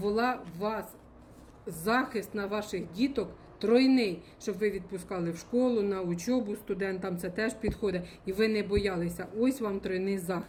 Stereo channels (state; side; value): identical; both; correlation 1.00